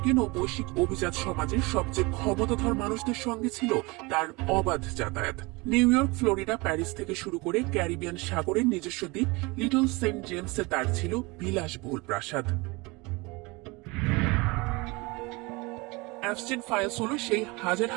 ও বৈশ্বিক অভিজাত সমাজের সবচেয়ে ক্ষমতাধর মানুষদের সঙ্গে ছিল তার অবাধ যাতায়াত। নিউ ইয়র্ক, ফ্লোরিডা, প্যারিস থেকে শুরু করে ক্যারিবিয়ান সাগরের নিজস্ব দ্বীপ লিটল সেন্ট জেমসে তার ছিল বিলাসবহুল প্রাসাদ। অ্যাপস্টিন ফাইলস হল সেই হাজার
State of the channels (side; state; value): left; quieter; 25.2 dB